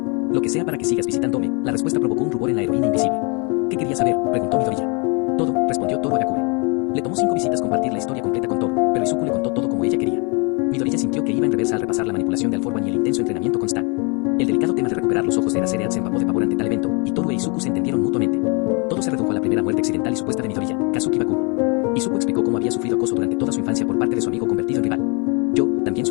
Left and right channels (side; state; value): right; quieter; 32.4 dB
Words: Lo que sea para que sigas visitándome. La respuesta provocó un rubor en la heroína invisible. ¿Qué querías saber?, preguntó Midoriya. Todo, respondió Toru Agakure. Le tomó 5 visitas compartir la historia completa con Toru, pero Izuku le contó todo como ella quería. Midoriya sintió que iba en reversa al repasar la manipulación de All For One y el intenso entrenamiento con Stan. El delicado tema de recuperar los ojos de Eraserhead se empapó de pavor ante tal evento, y Toru e Izuku se entendieron mutuamente. Todo se redujo a la primera muerte accidental y supuesta de Midoriya, Kazuki Bakugo. Izuku explicó cómo había sufrido acoso durante toda su infancia por parte de su amigo convertido en rival. Yo también